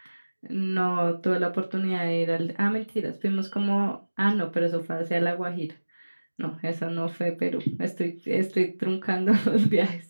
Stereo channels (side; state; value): both; inverted; correlation -1.00